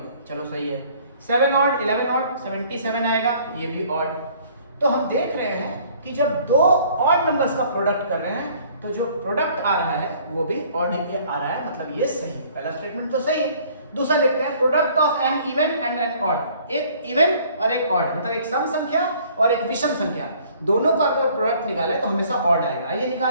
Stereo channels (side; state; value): both; inverted; correlation -0.56